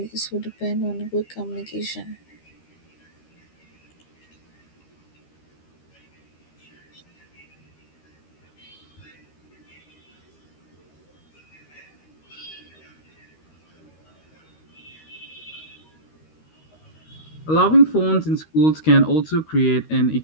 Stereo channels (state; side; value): late; right; 13 ms